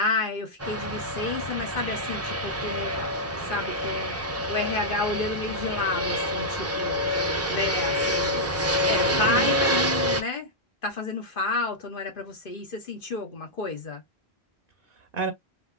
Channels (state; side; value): normal; both; correlation -0.07